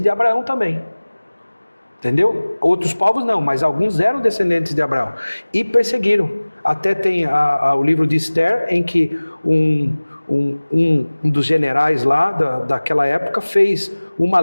de Abraão também. Entendeu? Outros povos não, mas alguns eram descendentes de Abraão. E perseguiram. Até tem o livro de Esther, em que um dos generais lá daquela época fez uma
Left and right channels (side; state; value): both; inverted; correlation -1.00